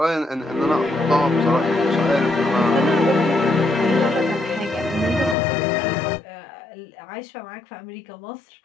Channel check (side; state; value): right; drops out; at 5.4 s